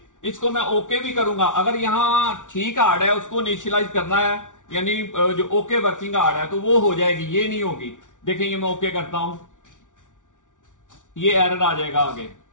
इसको मैं ओके भी करूंगा। अगर यहां ठीक हार्ड है उसको इनिशियलाइज करना है, यानी जो ओके वर्किंग हार्ड है तो वो हो जाएगी, ये नहीं होगी। देखें ये मैं ओके करता हूं, ये एरर आ जाएगा आगे।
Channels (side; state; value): right; late; 0.87 ms